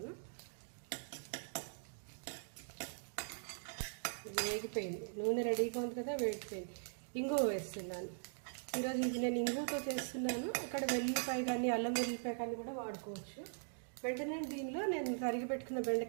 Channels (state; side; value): silent; left; digital silence